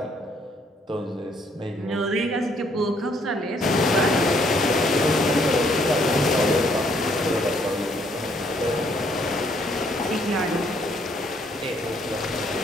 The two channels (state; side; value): normal; both; correlation 0.67